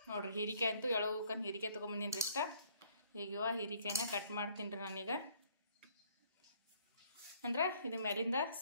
ನೋಡ್ರಿ. ಹೀರಿಕಾಯಿ ಅಂತೂ ಎಳೋಕನ್ ಹೀರಿಕಾಯಿ ತೊಗೊಂಬಂದಿನ್ರಿ ಇಷ್ಟ. ಈಗ ಹೀರಿಕಾಯಿನ ಕಟ್ ಮಾಡ್ತೀನಿ ರೀ ನಾನೀಗ. ಅಂದ್ರೆ ಇದು ಮೇಲಿಂದ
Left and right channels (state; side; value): inverted; both; correlation -0.62